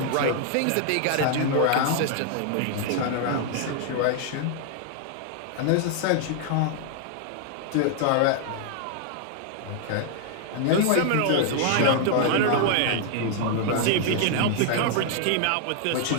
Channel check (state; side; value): different; both; correlation 0.00